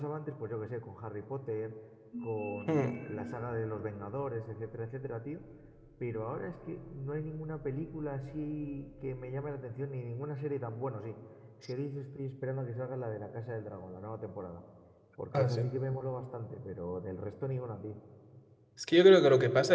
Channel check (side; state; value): both; identical; correlation 1.00